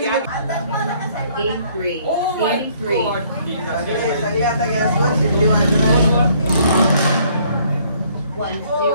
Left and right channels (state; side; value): inverted; both; correlation -0.63